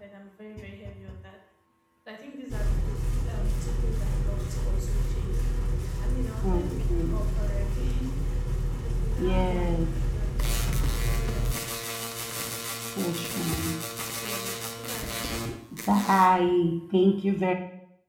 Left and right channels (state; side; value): identical; both; correlation 1.00